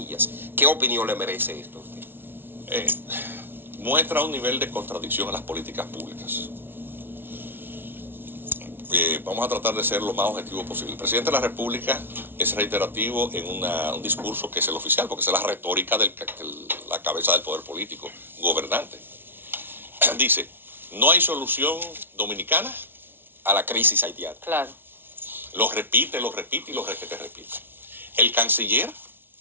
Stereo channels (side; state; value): left; late; 0.10 ms